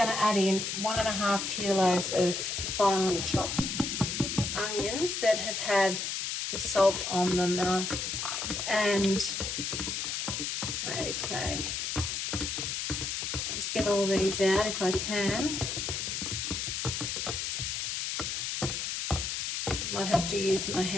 to add in 1.5 kilos of finely chopped onions that have had the salt on them. Okay, just get all these out if I can. Might have to use my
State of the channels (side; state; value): left; noise; hiss, 2 dB below the sound